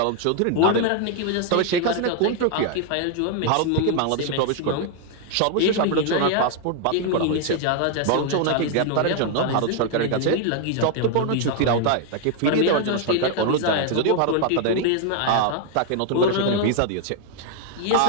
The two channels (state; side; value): different; both; correlation 0.00